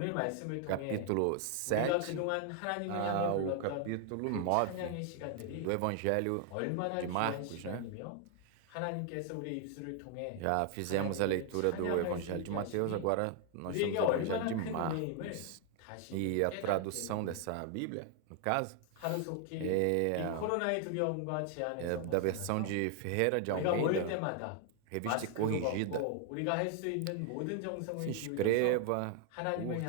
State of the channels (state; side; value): different; both; correlation 0.00